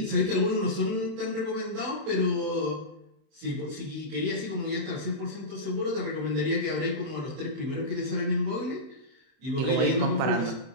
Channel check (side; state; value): left; late; 31 ms